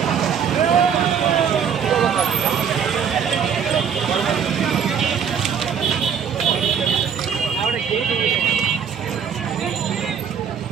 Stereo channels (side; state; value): left; quieter; 7.5 dB